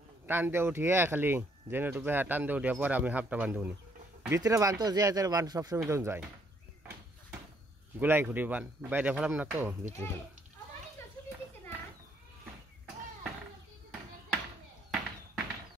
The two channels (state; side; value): normal; both; correlation 0.68